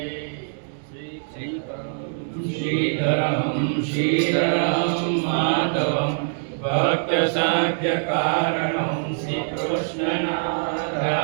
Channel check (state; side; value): silent; left; digital silence